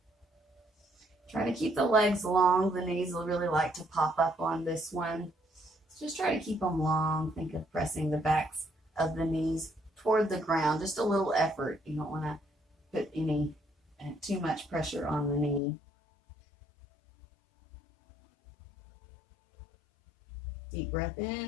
Try to keep the legs long. The knees will really like to pop up on this one. So just try to keep them long. Think of pressing the backs of the knees toward the ground. Just a little effort. You don't want to put any too much pressure on the knee. Deep breath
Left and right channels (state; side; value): drops out; right; at 15.6 s